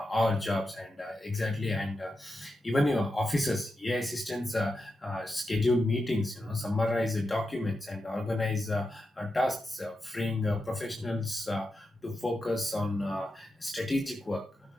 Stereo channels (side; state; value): both; normal; correlation 0.88